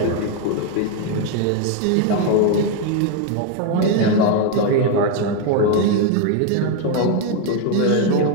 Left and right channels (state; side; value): different; both; correlation 0.01